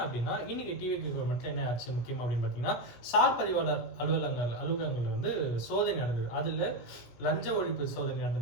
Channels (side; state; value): right; late; 17 ms